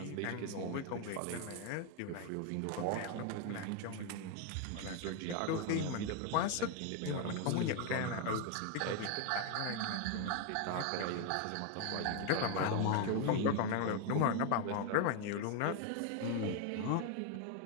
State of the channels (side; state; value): both; different; correlation 0.01